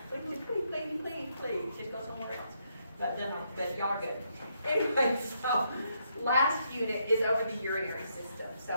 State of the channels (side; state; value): both; inverted; correlation -0.76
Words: Please, just go somewhere else. But no, but y'all are good. Anyway, so last unit is over the urinary system.